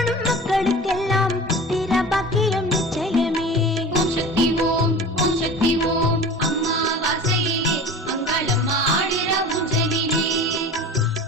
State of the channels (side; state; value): both; normal; correlation 0.37